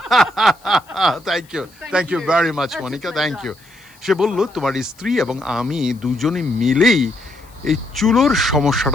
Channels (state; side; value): noise; left; hiss, 29 dB below the sound